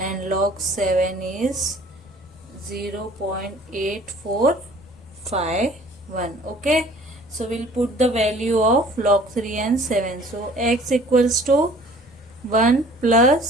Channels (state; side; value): noise; left; rumble, 27 dB below the sound